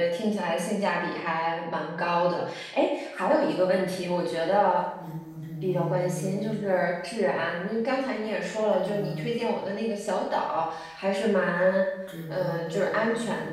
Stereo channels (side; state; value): both; identical; correlation 1.00